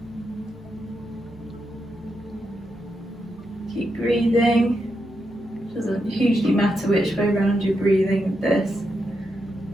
Keep breathing. Doesn't hugely matter which way around you're breathing with this.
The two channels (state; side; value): normal; both; correlation 0.84